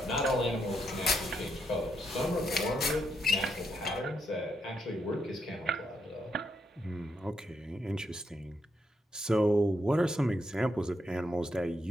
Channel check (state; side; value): normal; both; correlation 0.79